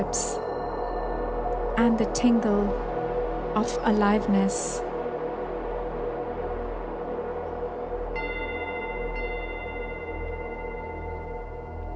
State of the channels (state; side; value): identical; both; correlation 1.00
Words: and the tingle of aliveness.